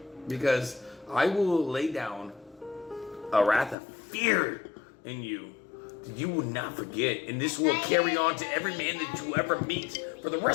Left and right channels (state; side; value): drops out; right; at 3.8 s